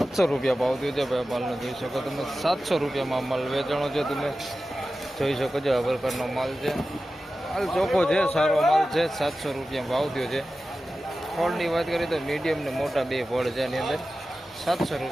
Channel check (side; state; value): both; normal; correlation 0.94